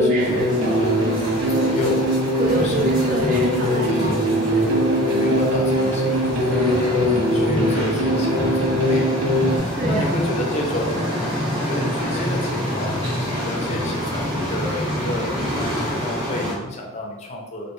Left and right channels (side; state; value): both; normal; correlation 0.43